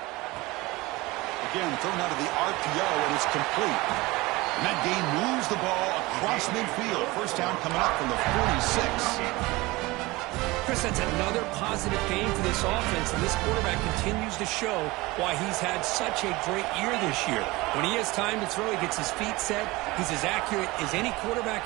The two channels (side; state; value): left; quieter; 21.6 dB